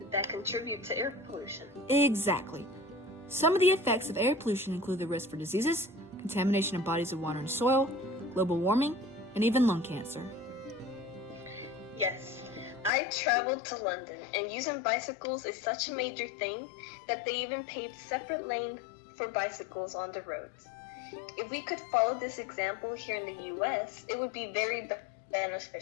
that contribute to air pollution. Exactly. Some of the effects of air pollution include the risk for diseases, contamination of bodies of water and soil, global warming, and even lung cancer. Yes, I traveled to London, and using bicycles is such a major thing that they even paved separate lanes for bicycles on the roads. If we could follow this example here in the U.S., it would be very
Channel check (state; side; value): drops out; right; at 12.9 s